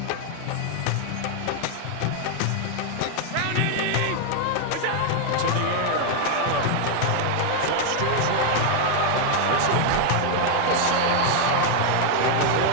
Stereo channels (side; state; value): both; different; correlation 0.00